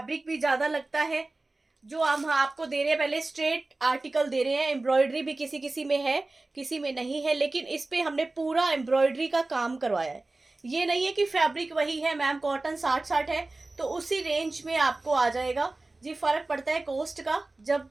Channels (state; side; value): quieter; left; 3.1 dB